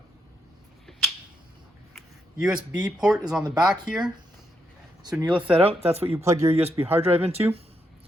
USB port is on the back here. So when you lift that out, that's what you plug your USB hard drive into.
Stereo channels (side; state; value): both; normal; correlation 0.80